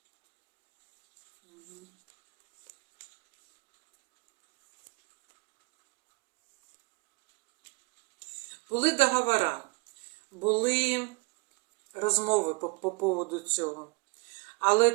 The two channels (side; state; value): left; quieter; 28.0 dB